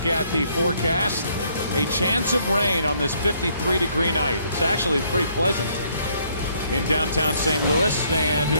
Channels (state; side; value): inverted; both; correlation -0.67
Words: at the forecast. A chance of rain on this 53-degree night. It's actually pretty pleasant in downtown St. Louis, and who